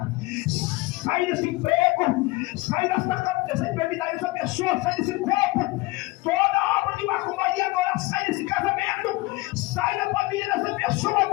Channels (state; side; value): quieter; right; 22.0 dB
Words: Sai desse emprego. Sai dessa enfermidade dessa pessoa. Sai desse corpo. Toda obra de macumbaria agora sai desse casamento. Sai da família dessa pessoa